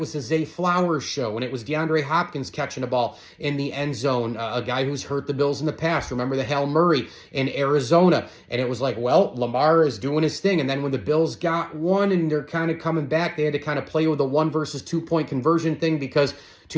the Zay Flowers show, and it was DeAndre Hopkins catching a ball in the end zone, a guy who's hurt the Bills in the past. Remember the Hail Murray in Arizona? And it was like, well, Lamar is doing his thing. And then when the Bills got one and they're kind of coming back, they had to kind of play with the 1 versus 2 point conversion thing because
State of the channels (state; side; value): identical; both; correlation 1.00